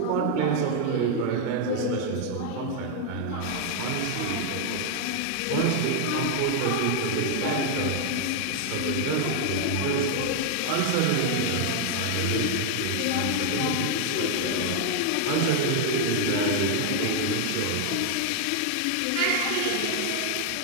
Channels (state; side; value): different; both; correlation 0.00